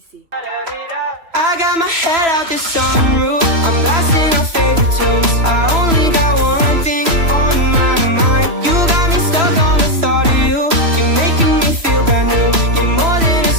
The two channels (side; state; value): left; late; 3.0 ms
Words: I got my head out the sunroof. I'm blasting our favorite tunes. I only got one thing on my mind. You got me stuck on the thought of you. You're making me feel brand new. You're more than a